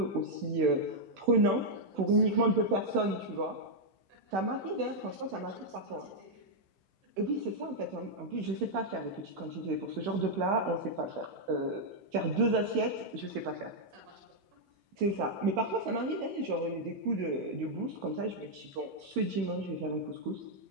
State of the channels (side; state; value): left; late; 16 ms